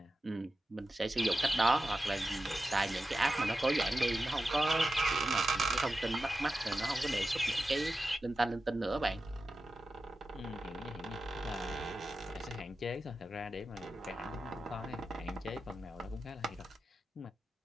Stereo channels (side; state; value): both; normal; correlation 0.92